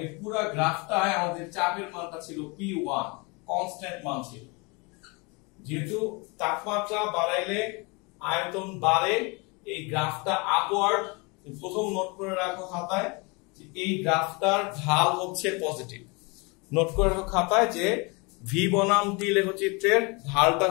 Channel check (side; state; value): right; quieter; 29.0 dB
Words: এই পুরো গ্রাফটায় আমাদের চাপের মানটা ছিল P1, কনস্ট্যান্ট মান ছিল। যেহেতু তাপমাত্রা বাড়াইলে আয়তন বাড়ে, এই গ্রাফটা আপওয়ার্ড। প্রথম নোট করে রাখো খাতায় যে এই গ্রাফটার ঢাল হচ্ছে পজিটিভ। নোট করে রাখো খাতায় যে ভি বনাম টি লেখচিত্রের ঢালটা